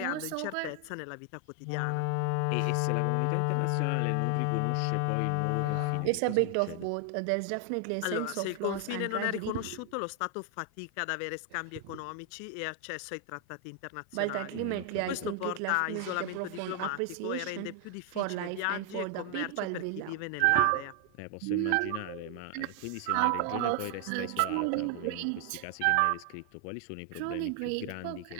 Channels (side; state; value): both; different; correlation 0.00